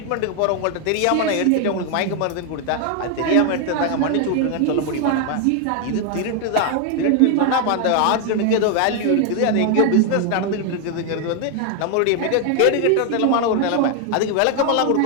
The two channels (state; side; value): different; both; correlation 0.01